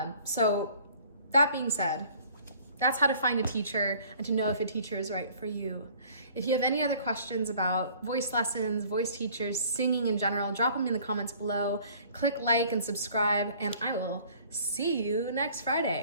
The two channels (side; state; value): both; inverted; correlation -0.53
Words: So that being said, that's how to find a teacher and to know if a teacher is right for you. If you have any other questions about voice lessons, voice teachers, singing in general, drop them in the comments below. Click like and subscribe, and I will see you next